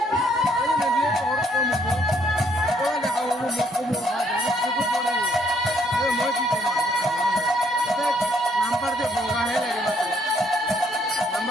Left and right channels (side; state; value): both; normal; correlation 0.68